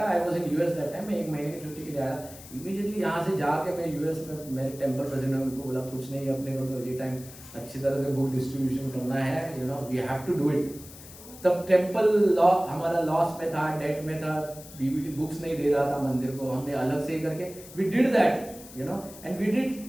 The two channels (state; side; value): noise; left; hiss, 17 dB below the sound